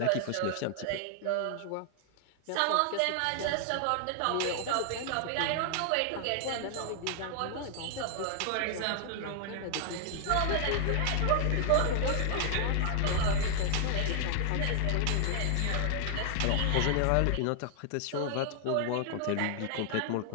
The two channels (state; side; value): different; both; correlation 0.00